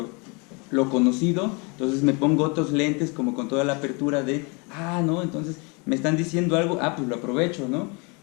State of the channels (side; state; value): right; quieter; 31.1 dB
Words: conocido, entonces me pongo otros lentes como con toda la apertura de, ¿no? Entonces me están diciendo algo, pues lo aprovecho, ¿no?